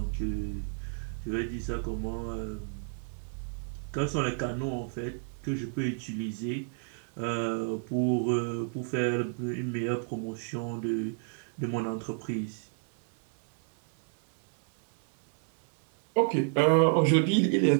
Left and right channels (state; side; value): silent; left; digital silence